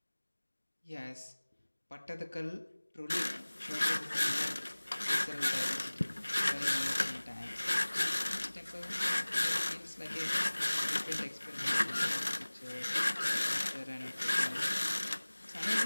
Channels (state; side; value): inverted; both; correlation -1.00